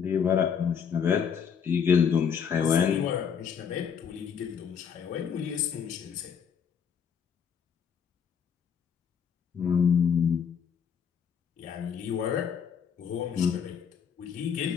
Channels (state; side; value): quieter; right; 7.2 dB